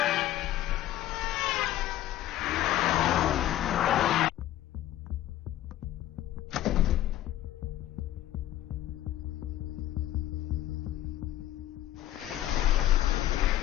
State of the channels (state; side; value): quieter; right; 13.5 dB